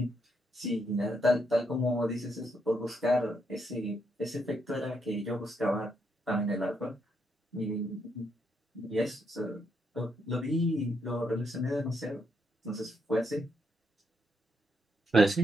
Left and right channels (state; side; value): normal; both; correlation 0.78